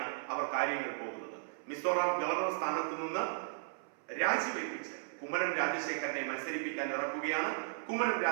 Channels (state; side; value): silent; left; 54 dB below the other